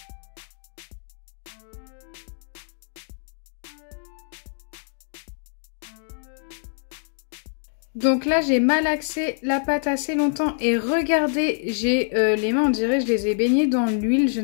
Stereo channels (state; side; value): silent; right; digital silence